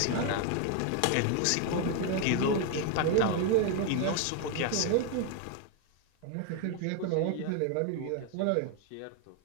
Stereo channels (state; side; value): different; both; correlation 0.01